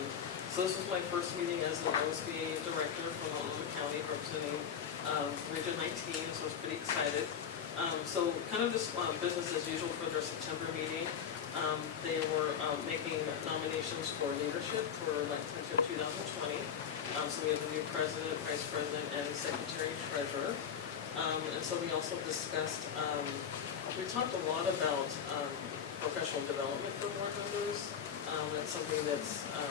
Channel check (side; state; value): right; quieter; 7.7 dB